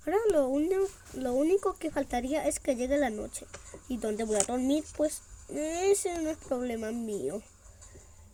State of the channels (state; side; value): identical; both; correlation 1.00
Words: Ahora lo único que faltaría es que llegue la noche. ¿Y dónde voy a dormir? Pues ese no es problema mío.